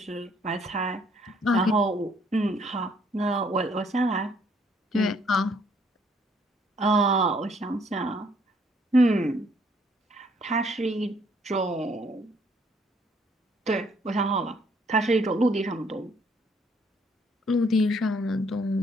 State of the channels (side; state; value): both; normal; correlation 0.65